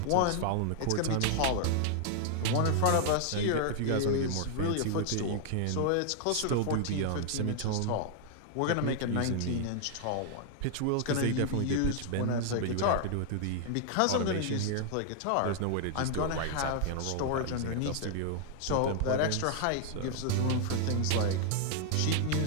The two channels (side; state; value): both; different; correlation 0.00